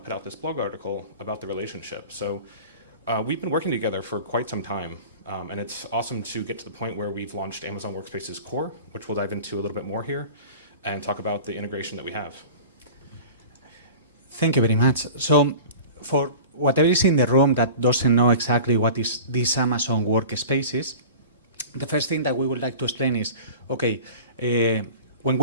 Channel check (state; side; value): inverted; both; correlation -0.38